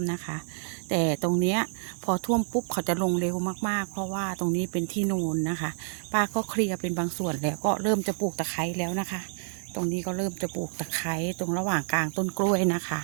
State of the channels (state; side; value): silent; left; digital silence